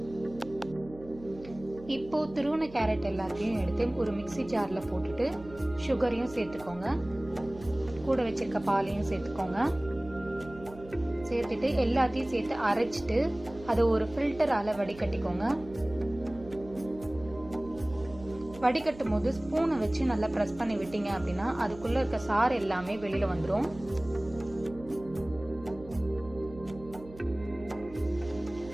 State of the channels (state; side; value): noise; right; hum, 18 dB below the sound